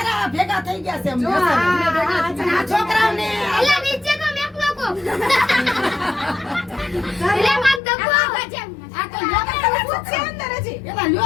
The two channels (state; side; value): drops out; right; at 7.8 s